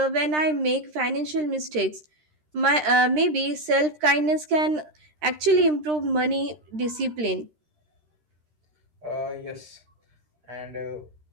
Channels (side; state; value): left; late; 13 ms